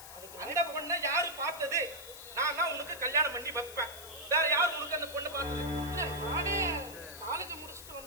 அந்த பொண்ணை யாரு பார்த்தது? நான் தான் உனக்கு கல்யாணம் பண்ணி வைப்பேன். வேற யாரும் உனக்கு அந்த பொண்ணு பார்த்தது? நானே காலேஜ் முடிச்சுட்டு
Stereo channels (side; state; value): left; noise; hiss, 14 dB below the sound